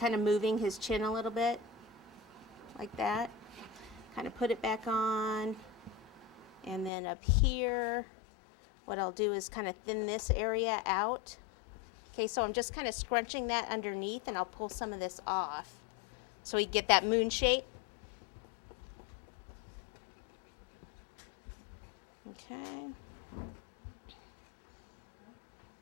of moving his chin a little bit? Like that. Kind of put it back on. And then up here, what I'll do is kind of thin this area out. Okay, so I'm just kind of scrunching that underneath, and I'll pull some of this off so we get that moon shape. Okay.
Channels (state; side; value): drops out; right; at 6.9 s